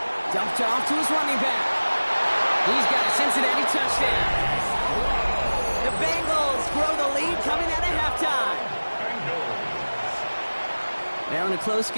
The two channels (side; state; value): both; inverted; correlation -1.00